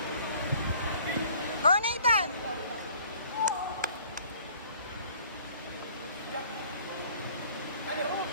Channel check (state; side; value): inverted; both; correlation -0.54